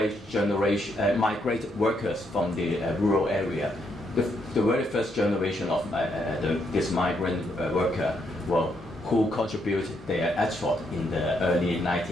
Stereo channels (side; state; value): both; normal; correlation 0.76